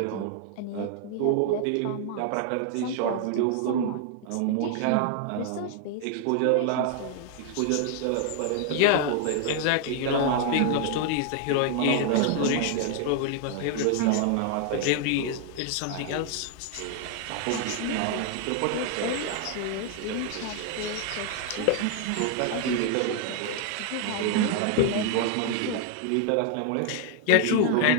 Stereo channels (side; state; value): both; different; correlation 0.00